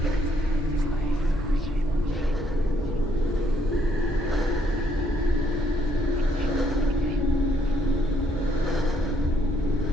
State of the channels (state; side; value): normal; both; correlation 0.70